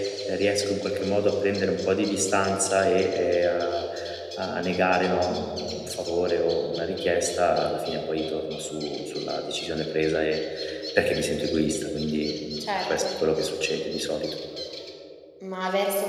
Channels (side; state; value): both; identical; correlation 1.00